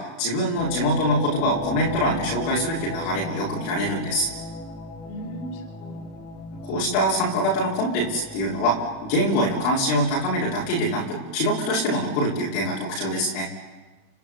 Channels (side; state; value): right; late; 36 ms